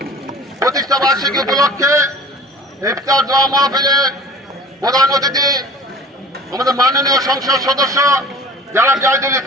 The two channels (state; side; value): normal; both; correlation 0.43